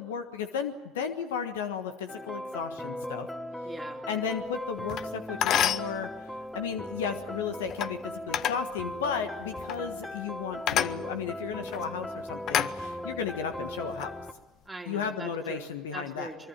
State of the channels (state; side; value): quieter; right; 5.9 dB